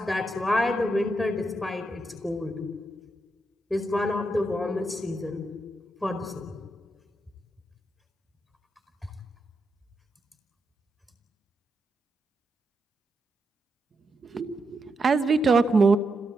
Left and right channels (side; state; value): both; normal; correlation 0.84